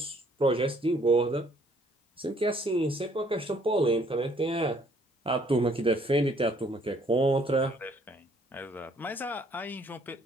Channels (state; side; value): normal; both; correlation 0.63